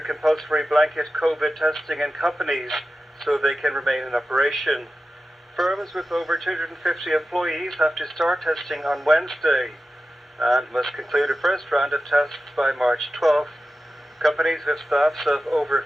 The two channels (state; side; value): normal; both; correlation 0.93